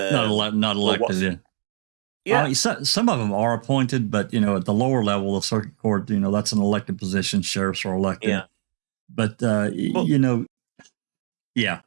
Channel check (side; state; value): left; silent; 60 dB below the other